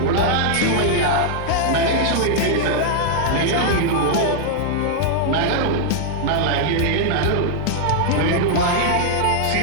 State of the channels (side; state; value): both; different; correlation 0.00